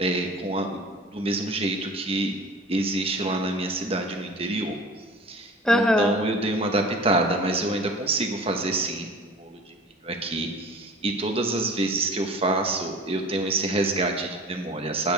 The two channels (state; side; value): normal; both; correlation 0.40